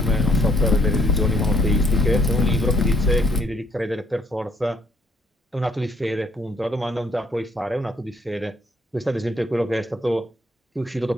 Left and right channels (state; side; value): normal; both; correlation 0.67